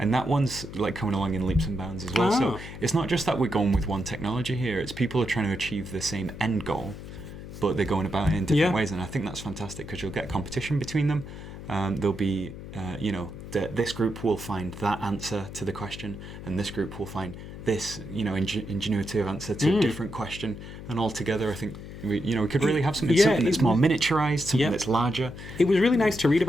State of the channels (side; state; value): left; noise; hum, 12 dB below the sound